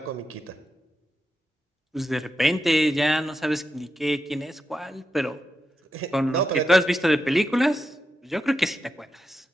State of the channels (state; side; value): normal; both; correlation 0.87